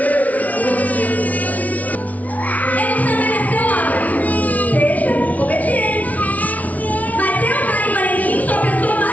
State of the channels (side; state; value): right; late; 0.071 ms